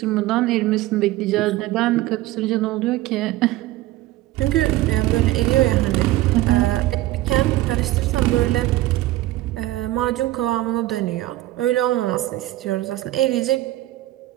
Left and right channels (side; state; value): left; quieter; 16.4 dB